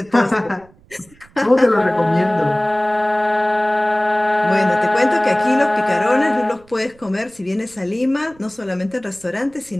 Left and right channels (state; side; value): noise; right; rumble, 28 dB below the sound